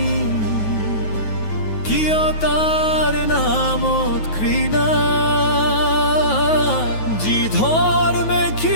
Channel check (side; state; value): right; late; 9.4 ms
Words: কিয় তাৰ নামত ঘৃণা? যি ধৰ্মে